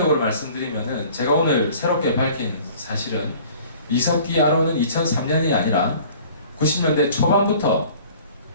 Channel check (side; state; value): both; inverted; correlation -0.49